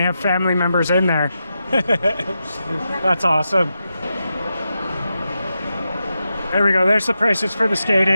have family members in there. That's awesome. There we go. There's the prices for the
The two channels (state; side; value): inverted; both; correlation -0.88